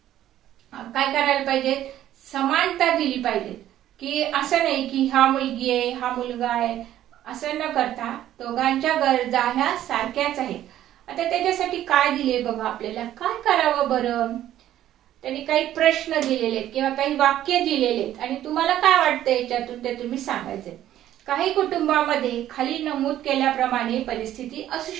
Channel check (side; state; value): left; quieter; 12.4 dB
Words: काय करायला पाहिजे, समानता दिली पाहिजे. की असं नाही की हा मुलगी आहे हा मुलगा आहे असं न करता दोघांच्या गरजा ह्या सारख्याच आहेत. आता त्याच्यासाठी काय दिले बघा, आपल्याला काय करावं बरं, त्यांनी काही प्रश्न दिलेले आहेत किंवा काही वाक्य दिलेले आहेत आणि तुम्हाला काय वाटतं याच्यातून ते तुम्ही सांगायचे. काही कुटुंबामध्ये खाली नमूद केल्याप्रमाणे परिस्थिती असू